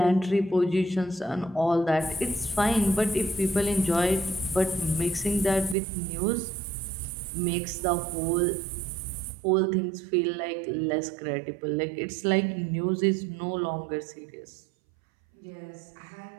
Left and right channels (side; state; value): left; drops out; at 5.8 s